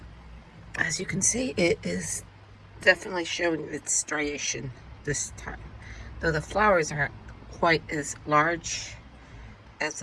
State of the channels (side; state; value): both; identical; correlation 1.00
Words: As you can see, it is definitely showing its striation this time, though the flowers aren't quite as large as